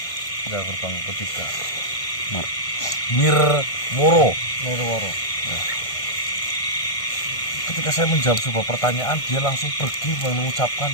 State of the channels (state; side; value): late; right; 1.5 ms